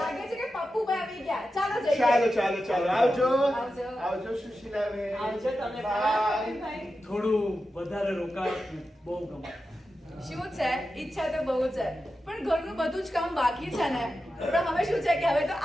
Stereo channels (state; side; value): normal; both; correlation 0.91